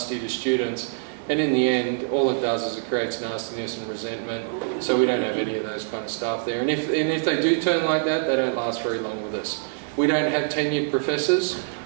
to students. And in the end, all it does is it creates nastiness and resentment. So we don't have any of those kind of staff there. And if they do turn like that, they don't last very long with us. We don't have tenured professors.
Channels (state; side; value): silent; left; 55 dB below the other